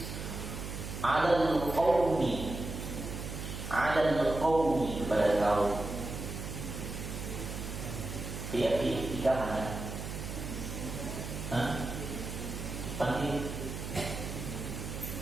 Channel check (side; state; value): right; noise; hum, 7 dB below the sound